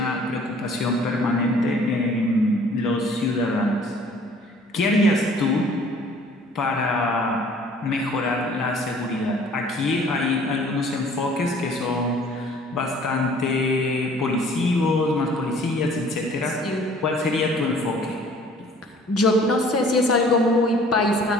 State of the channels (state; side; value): normal; both; correlation 0.54